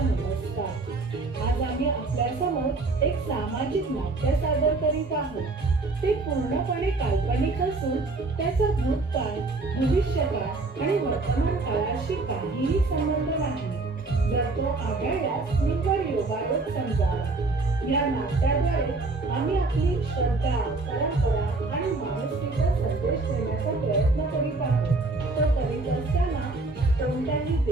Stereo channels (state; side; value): quieter; left; 3.4 dB